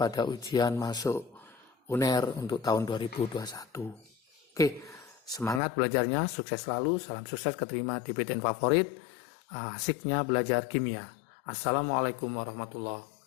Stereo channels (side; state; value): right; drops out; at 5.6 s